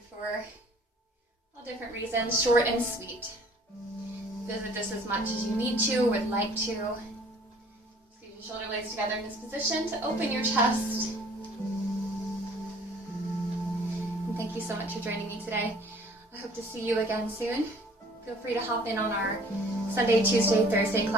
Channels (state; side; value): normal; both; correlation 0.53